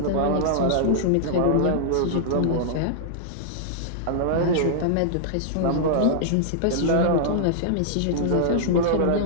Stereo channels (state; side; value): different; both; correlation -0.01